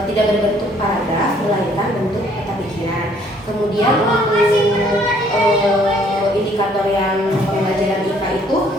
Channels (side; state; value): both; normal; correlation 0.62